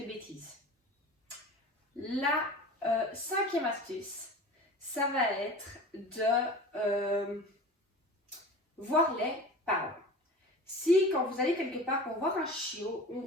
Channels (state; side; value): normal; both; correlation 0.37